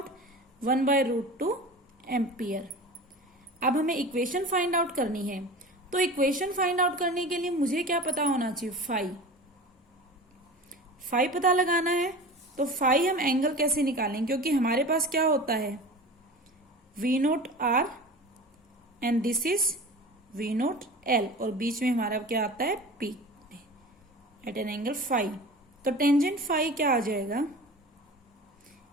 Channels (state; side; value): normal; both; correlation 0.35